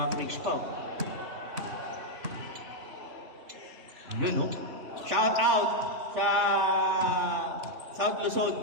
freaks pa. Yun, no? Shout out sa South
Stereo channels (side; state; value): left; late; 3.2 ms